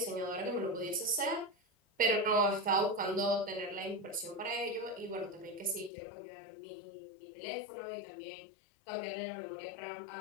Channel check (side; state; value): right; drops out; at 5.9 s